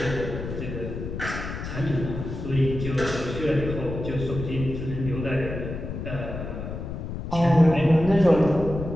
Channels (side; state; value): left; noise; rumble, 7 dB below the sound